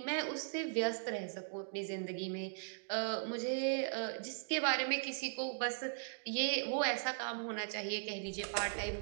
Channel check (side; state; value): left; silent; digital silence